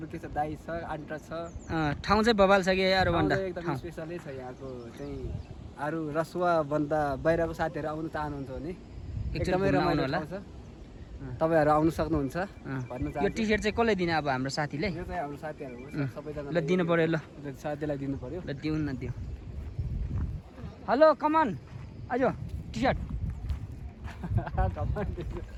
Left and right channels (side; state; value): both; identical; correlation 1.00